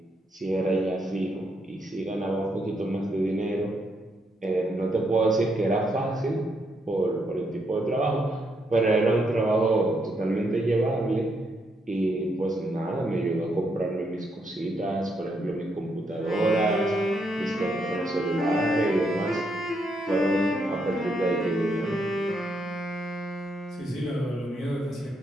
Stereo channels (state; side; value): normal; both; correlation 0.77